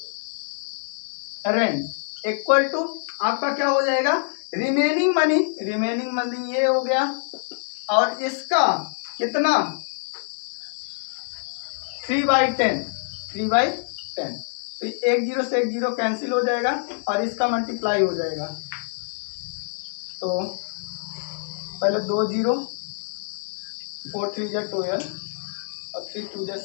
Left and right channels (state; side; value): silent; right; digital silence